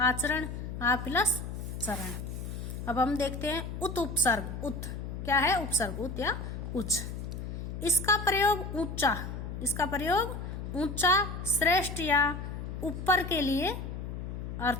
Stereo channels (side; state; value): left; noise; hum, 6 dB below the sound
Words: आ प्लस चरण। अब हम देखते हैं उत उपसर्ग। उत क्या है, उपसर्ग, उत या उच्च। इसका प्रयोग ऊंचा, इसका प्रयोग ऊंचा, श्रेष्ठ या ऊपर के लिए